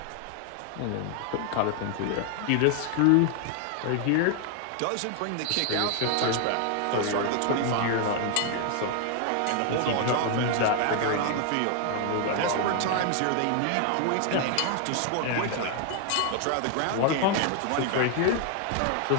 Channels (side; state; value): both; different; correlation 0.00